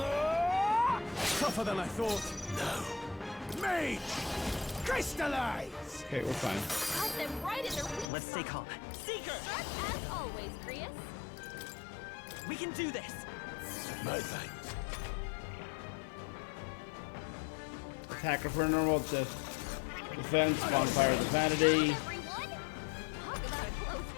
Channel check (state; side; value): drops out; right; at 8.1 s